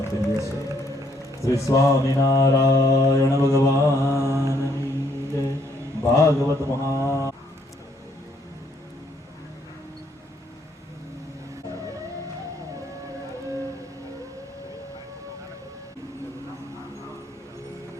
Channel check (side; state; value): both; normal; correlation 0.68